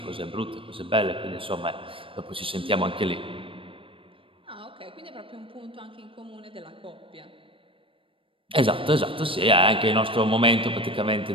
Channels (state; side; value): late; left; 0.25 ms